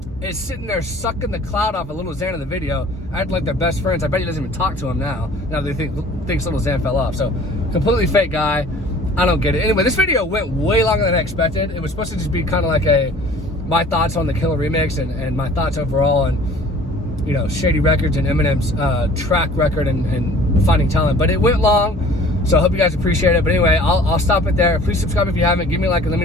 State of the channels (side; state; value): both; normal; correlation 0.49